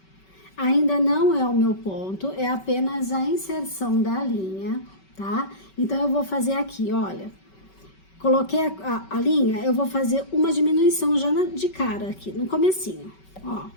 Ainda não é o meu ponto, é apenas a inserção da linha, tá? Então, eu vou fazer aqui, olha. Coloquei a linha, eu vou fazer uma diminuição já de cara aqui, no comecinho. Ó,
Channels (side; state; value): right; late; 5.3 ms